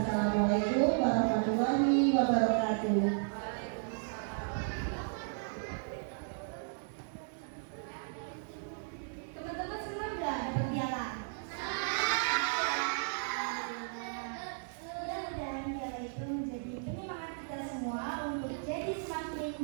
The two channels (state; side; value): silent; left; digital silence